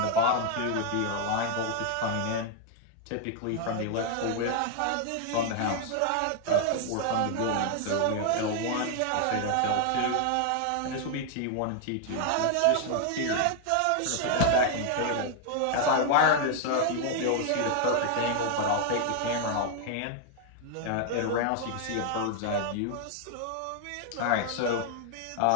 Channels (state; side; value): different; both; correlation 0.00